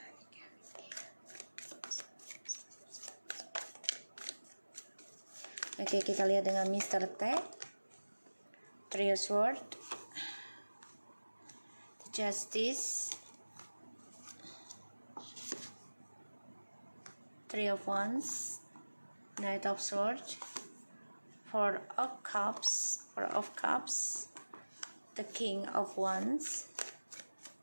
Oke, kita lihat dengan Mr. T. Three of Swords, Justice, Three of Wands, Knight of Swords, Four of Cups, the King of Wands,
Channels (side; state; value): both; inverted; correlation -1.00